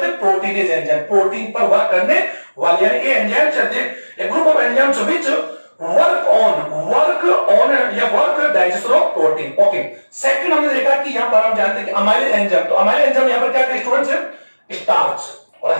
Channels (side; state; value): both; inverted; correlation -1.00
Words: हैं, प्रोटीनेज एंजाइम, प्रोटीन पर वर्क करने वाले, यानी ये एंजाइम चलते हैं group of enzymes which work on या work digestion of protein. Okay, second हमने देखा कि यहां पर हम जानते हैं कि अमाइलेज एंजाइम, तो अमाइलेज एंजाइम यहां पर क्या है स्टूडेंट्स है, स्टार्च, और